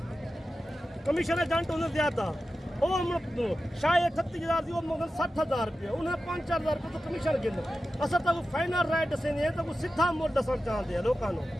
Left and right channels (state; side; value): normal; both; correlation 0.93